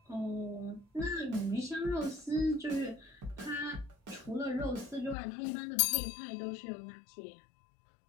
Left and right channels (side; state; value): right; drops out; at 5.2 s